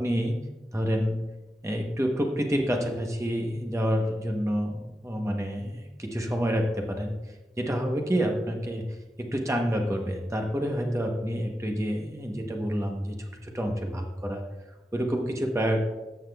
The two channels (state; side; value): normal; both; correlation 0.89